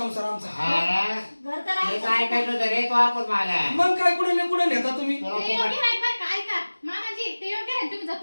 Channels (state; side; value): inverted; both; correlation -1.00